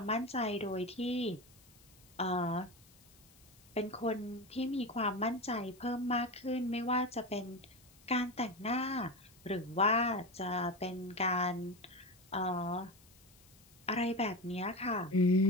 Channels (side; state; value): left; noise; hiss, 26 dB below the sound